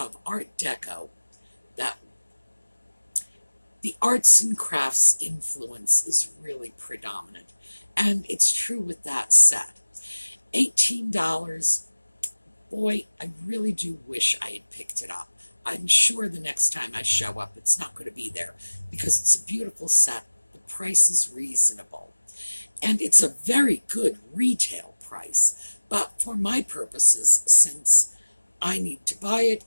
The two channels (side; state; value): both; inverted; correlation -1.00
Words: Art Deco that the arts and crafts influence is really predominant. And it's true with that set. $18, boy, I really do wish I had picked it up. I'm sure the next time I show up, it's not going to be there because it's a beautiful set. The price is reasonable. And it's a very good retail price. But for my purposes, since I need to buy it